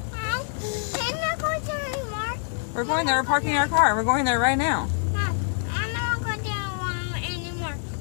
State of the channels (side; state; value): right; silent; 61 dB below the other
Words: Can I go there anymore? We're going there, we're parking our car. We're going there right now. Mom, I'm not going there anymore.